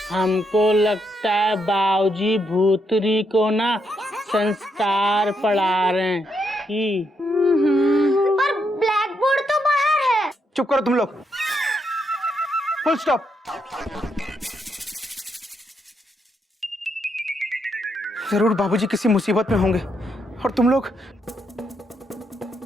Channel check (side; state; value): both; normal; correlation 0.78